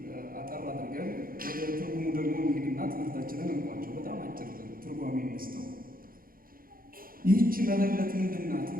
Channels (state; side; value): late; left; 0.42 ms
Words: አጠር አድርገን ወደ ትርጉሙ ደግሞ እንሂድና ትምህርታችንን እንቋጨው። በጣም አጭር ትርጓሜ እንስተው። ይህች መበለት ምንድን ናት